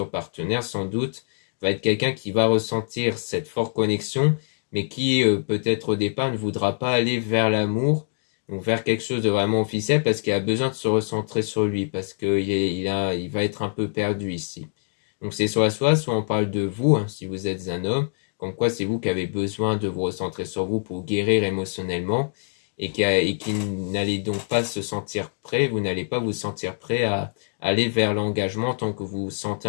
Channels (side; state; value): right; silent; digital silence